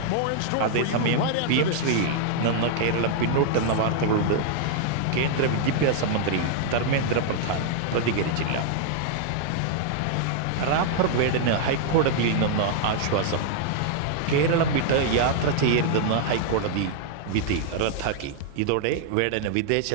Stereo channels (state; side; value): different; both; correlation -0.01